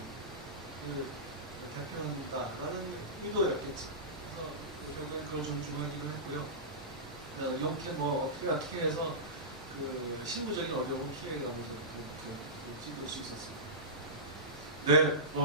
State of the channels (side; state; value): both; normal; correlation -0.18